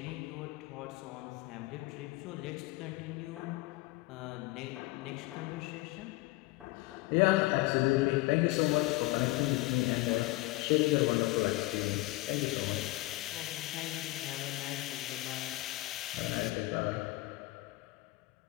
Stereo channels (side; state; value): right; quieter; 20.4 dB